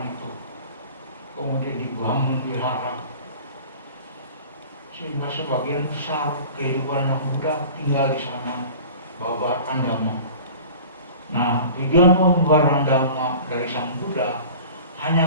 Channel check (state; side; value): inverted; both; correlation -0.41